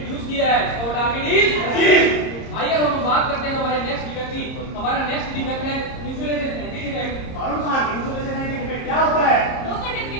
किया है और टारगेट इज। आइए हम बात करते हैं हमारे नेक्स्ट डिफेक्ट की। हमारा नेक्स्ट डिफेक्ट है इंसुलेशन एंटी डिफेक्ट। अरुण साहब, इंसुलेशन एंटी डिफेक्ट क्या होता है? लो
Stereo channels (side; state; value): right; late; 30 ms